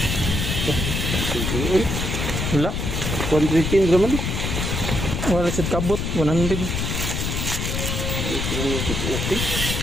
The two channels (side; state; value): left; noise; rumble, 1 dB below the sound